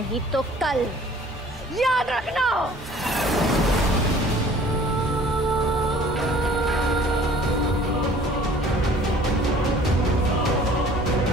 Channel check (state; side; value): normal; both; correlation 0.51